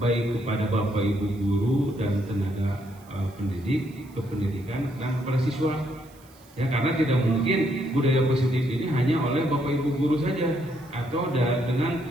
baik kepada Bapak Ibu guru dan tenaga pendidik, kependidikan dan kepada siswa. Ya, karena tidak mungkin budaya positif ini hanya oleh Bapak Ibu guru saja atau dengan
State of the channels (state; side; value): noise; right; hiss, 27 dB below the sound